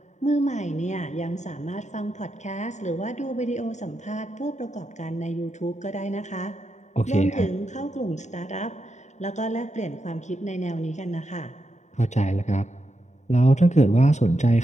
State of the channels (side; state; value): right; late; 0.34 ms